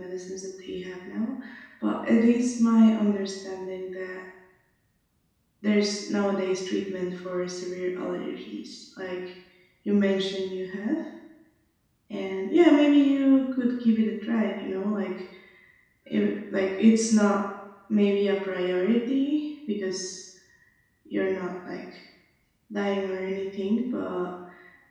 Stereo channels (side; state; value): both; identical; correlation 1.00